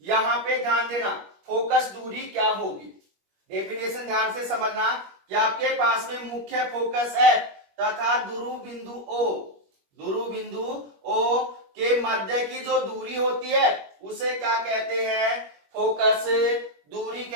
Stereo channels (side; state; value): left; late; 21 ms